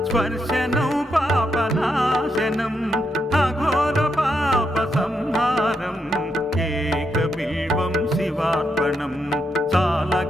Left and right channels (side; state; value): both; normal; correlation 0.81